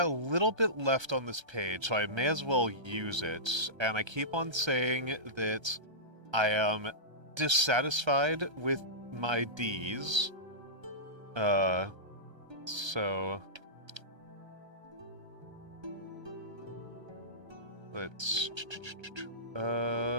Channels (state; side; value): late; left; 1.3 ms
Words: a little bit left on this page, so I may as well use it. And I keep on saying that I am dissatisfied with my Ds. So let's